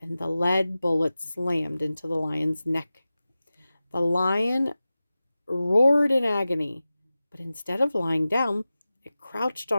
and the lead bullet slammed into the lion's neck. The lion roared in agony, but instead of lying down, it crouched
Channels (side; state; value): both; inverted; correlation -0.96